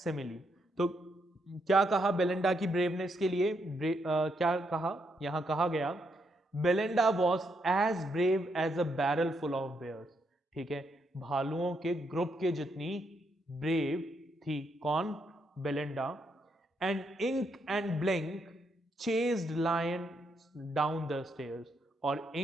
तो क्या कहा बेलिंडा की ब्रेवनेस के लिए? क्या कहा? यहां कहा गया Belinda was as brave as a barrel full of bears, ठीक है, भालुओं के ग्रुप के जितनी ब्रेव थी। कौन? Belinda. And Ink and Blink chased lion down the stairs, और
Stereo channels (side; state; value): both; normal; correlation 0.78